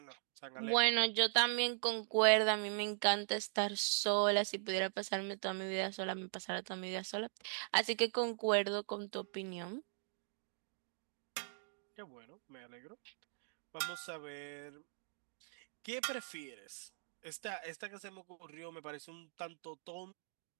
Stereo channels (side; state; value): left; silent; digital silence